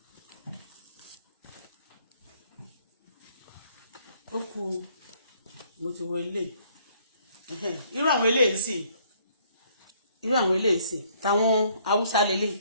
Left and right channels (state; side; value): inverted; both; correlation -0.64